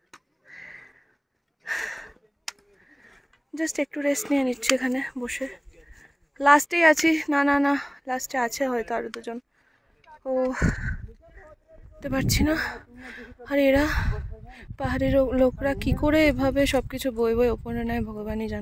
জাস্ট একটু রেস্ট নিয়ে নিচ্ছি এখানে বসে। লাস্টেই আছি, না না না লাস্টে আছে হয়তো আরো দুজন, ও বুঝতে পারছি না। আর এরা পাহাড়ের লোকরা কি করে এভাবে সবকিছু বই বই ওপরে নেয় ভগবানই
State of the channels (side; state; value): both; identical; correlation 1.00